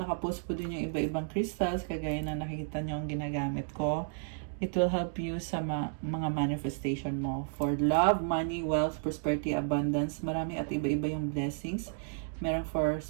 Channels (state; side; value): silent; left; digital silence